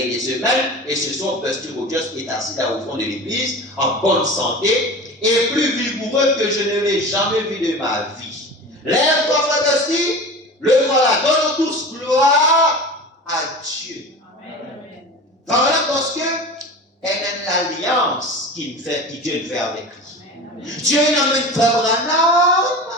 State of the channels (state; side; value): normal; both; correlation 0.33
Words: des semaines. Et ce soir, Busty Rogers est assis là au fond de l'église, en bonne santé et plus vigoureux que je ne l'ai jamais vu de ma vie. Lève-toi, frère Busty, le voilà. Donne tous gloire à Dieu. Amen. Voilà parce que elle est l'alliance qu'il fait, que Dieu fait avec lui. Amen. Dieu n'amène Frère Branham